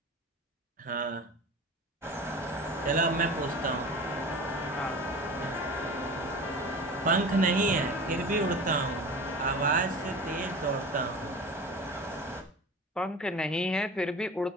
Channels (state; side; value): normal; both; correlation 0.35